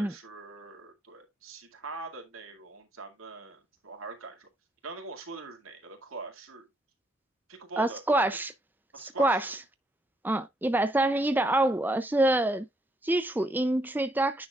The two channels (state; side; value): normal; both; correlation 0.74